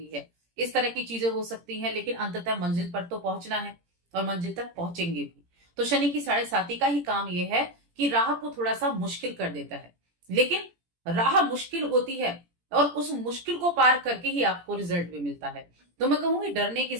है, इस तरह की चीजें हो सकती हैं। लेकिन अंततः मंजिल पर तो पहुंचना है और मंजिल तक पहुंचेंगे भी। तो शनि की 7.5 का ही काम यह है कि राह को थोड़ा सा मुश्किल कर देता है, लेकिन राह मुश्किल होती है और उस मुश्किल को पार करके ही आपको रिजल्ट भी मिलता है। तो मैं कहूंगी डरने की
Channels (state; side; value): late; left; 17 ms